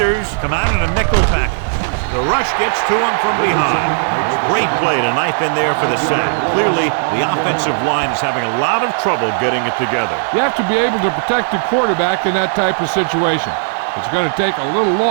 come out in a nickel package. The rush gets to him from behind. Great play to knife in there for the sack. Clearly, the offensive line is having a lot of trouble getting it together. You have to be able to protect the quarterback in that type of situation. It's going to take a little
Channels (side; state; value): left; silent; 55 dB below the other